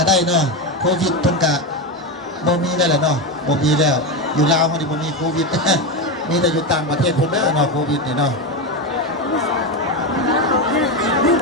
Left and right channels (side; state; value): both; normal; correlation 0.14